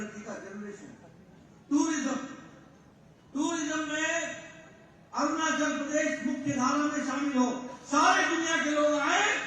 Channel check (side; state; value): both; identical; correlation 1.00